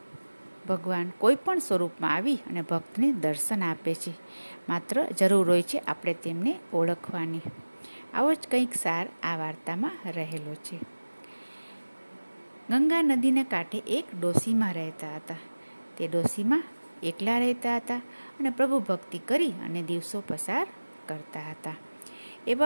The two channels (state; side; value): inverted; both; correlation -1.00